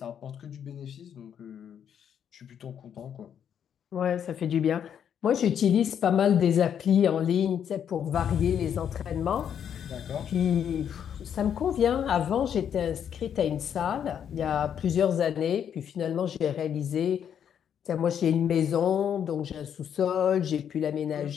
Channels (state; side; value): quieter; right; 8.7 dB